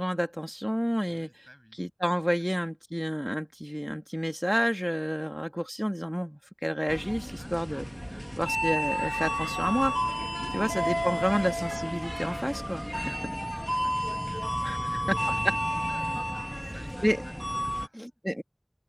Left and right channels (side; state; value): both; identical; correlation 1.00